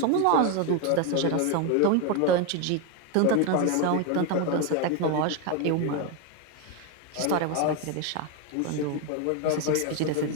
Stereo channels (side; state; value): both; different; correlation 0.02